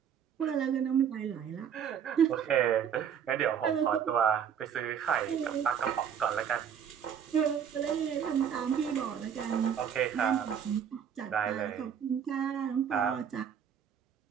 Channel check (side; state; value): left; quieter; 8.2 dB